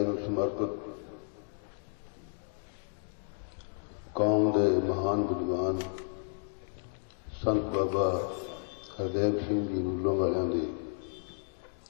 ਸਮਰਪਿਤ ਕੌਮ ਦੇ ਮਹਾਨ ਵਿਦਵਾਨ ਸੰਤ ਬਾਬਾ ਹਰਦੇਵ ਸਿੰਘ ਜੀ ਨੂਲੋਂ ਵਾਲਿਆਂ ਦੇ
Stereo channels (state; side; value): silent; right; 56 dB below the other